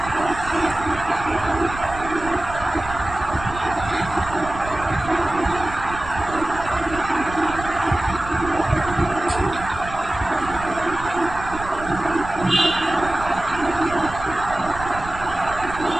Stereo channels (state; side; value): noise; right; rumble, 12 dB below the sound